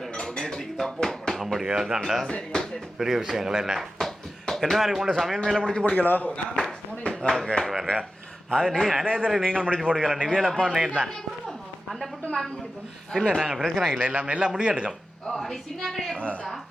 நேற்றுக்கு தப்பு. அப்படியா? அதுதான்டா பெரிய விஷயங்கள். என்ன மாதிரி கொண்டு சமையல் மேலே முடிச்சு போடுங்களோ? ஓகே வேறு அது அநேகரை நீங்கள் முடிச்சு போடுங்களா? நிவியலப்பா நேர் தான் இல்லை, நாங்கள் பிரச்சனை இல்லை, எல்லாம் முடியெடுக்கும்.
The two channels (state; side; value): normal; both; correlation 0.93